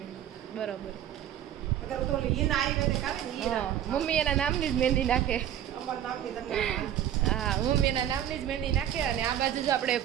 બરોબર. અગર તો ઈન આવી ને કાવે ને ઈ. મમ્મી એના નામની જ મહેંદી નાખે. અમાર નામની તમને. હા, મમ્મી એના નામની જ મહેંદી નાખે. અને આ બાજુ જો આપણે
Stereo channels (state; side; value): quieter; left; 10.8 dB